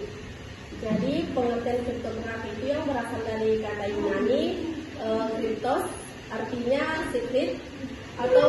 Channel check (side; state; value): both; identical; correlation 1.00